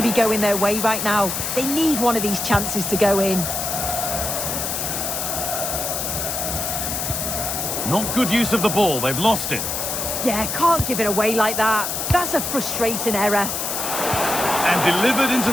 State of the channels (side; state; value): left; noise; hiss, 2 dB below the sound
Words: be going their way right now. They need one of these chances to go in. Not good use of the ball. They've lost it. Yeah, can't give it away like that. That's a frustrating error. And delivered into